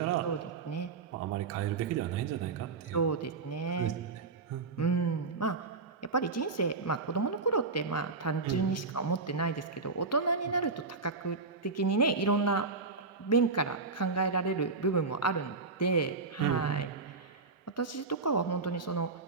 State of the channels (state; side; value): quieter; left; 4.1 dB